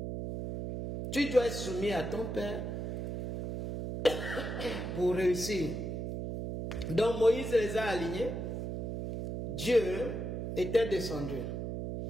Tu dois être soumis à ton père pour réussir. Donc Moïse les a alignés. Dieu était descendu.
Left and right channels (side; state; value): right; noise; hum, 4 dB below the sound